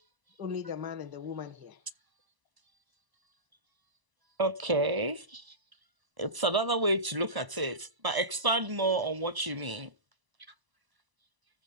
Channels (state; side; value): late; left; 1.0 ms